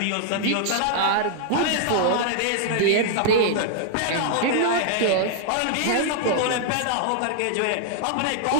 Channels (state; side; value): different; both; correlation -0.01